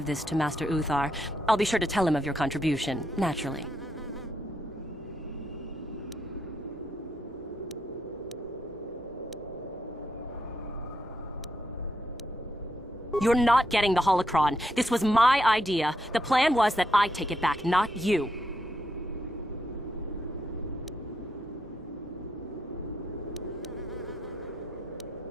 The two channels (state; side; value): normal; both; correlation 0.79